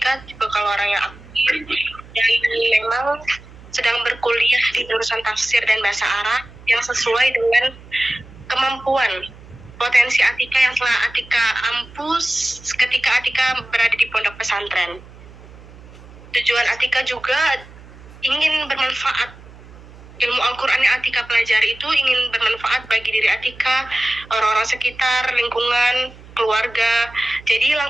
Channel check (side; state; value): right; noise; hum, 20 dB below the sound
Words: tipe kalau orang yang aktif dan memang sedang berkuliah di jurusan tafsir dan bahasa Arab yang sesuai dengan kemampuan potensi Atika yang telah Atika ampus ketika Atika berada di pondok pesantren. Tujuan Atika juga ingin bermanfaat. Ilmu Al-Quran yang Atika pelajari itu ingin bermanfaat bagi diri Atika, orang-orang sekitar, lingkungan, keluarga. Jadi